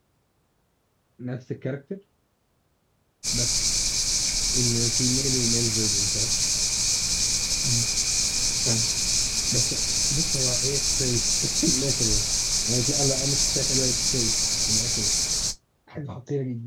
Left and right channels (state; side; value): identical; both; correlation 1.00